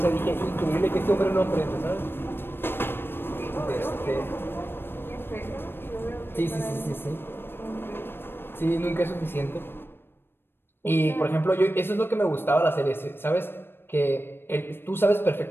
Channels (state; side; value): late; right; 0.10 ms